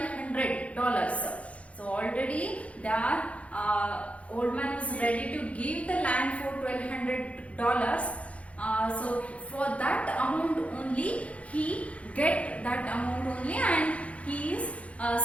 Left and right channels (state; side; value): late; right; 0.064 ms